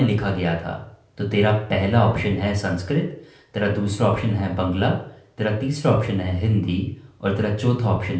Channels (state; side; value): identical; both; correlation 1.00